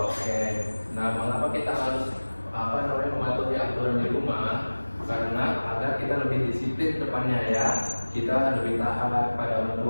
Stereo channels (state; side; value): inverted; both; correlation -1.00